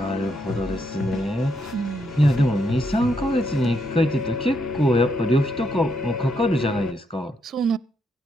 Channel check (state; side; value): normal; both; correlation 0.78